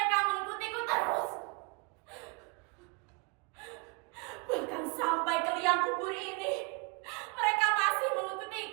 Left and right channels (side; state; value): left; quieter; 29.5 dB